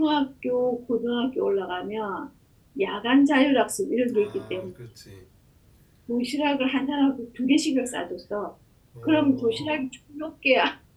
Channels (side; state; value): both; identical; correlation 1.00